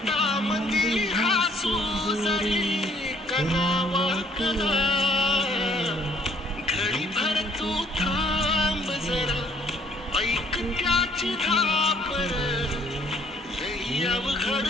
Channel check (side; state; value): both; normal; correlation 0.61